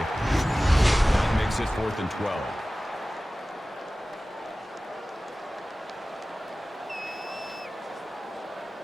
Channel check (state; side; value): normal; both; correlation 0.97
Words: That makes it 4th and 12.